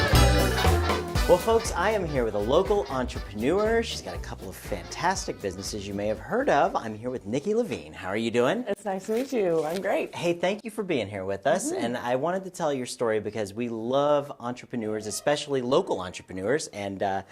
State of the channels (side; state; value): both; identical; correlation 1.00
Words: Well, folks, I am here with a local entrepreneur. She's got a couple of fantastic businesses you may have heard of. I'm here with Nikki Levine. How are you doing? It's nice to meet you. I'm great. Hey, thank you for being here with us. And I wanted to tell your story because we love entrepreneurs, especially local entrepreneurs, and